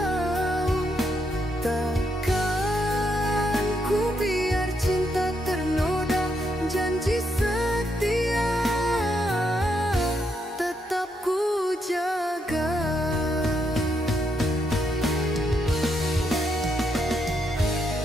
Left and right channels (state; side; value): normal; both; correlation 0.78